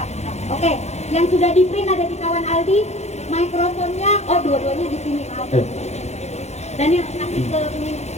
Oke, yang sudah di print ada di kawan Aldi. Mikrofonnya, dua-duanya di sini. Dan yang kasih ke ini.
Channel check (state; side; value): late; right; 0.32 ms